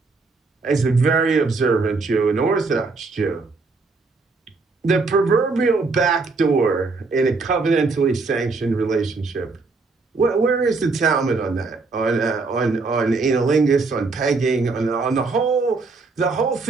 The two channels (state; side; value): quieter; left; 4.0 dB